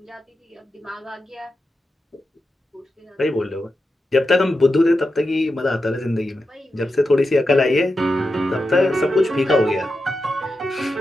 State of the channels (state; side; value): normal; both; correlation 0.89